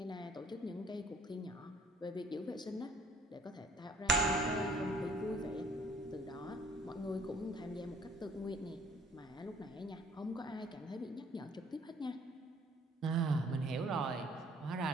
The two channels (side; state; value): both; normal; correlation 0.57